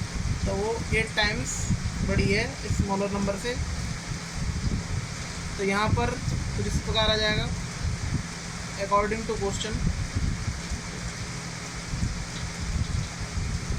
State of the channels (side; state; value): both; identical; correlation 1.00